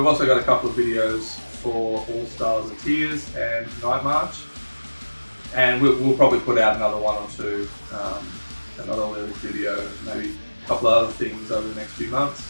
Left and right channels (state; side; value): inverted; both; correlation -1.00